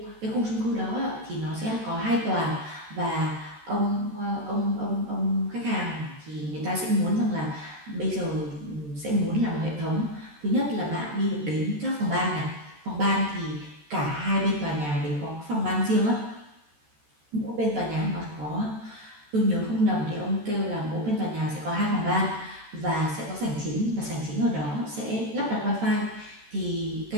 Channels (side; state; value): left; late; 14 ms